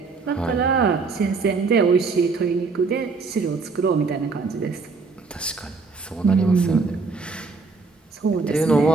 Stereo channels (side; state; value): left; quieter; 4.4 dB